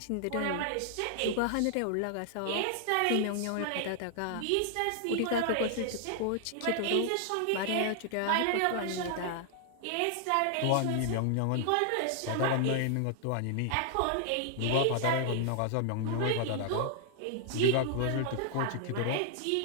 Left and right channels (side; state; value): both; different; correlation 0.00